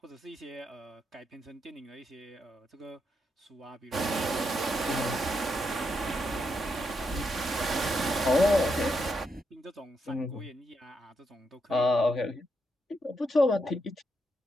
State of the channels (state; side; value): normal; both; correlation 0.81